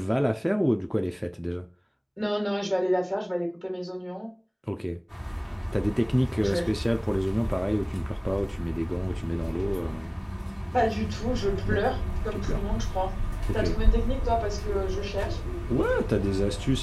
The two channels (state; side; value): identical; both; correlation 1.00